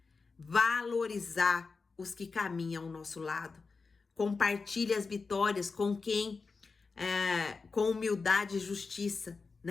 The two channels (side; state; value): right; quieter; 4.5 dB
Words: Valorizar os que caminham ao nosso lado. Compartilhe as vitórias com quem, com humildade e justiça,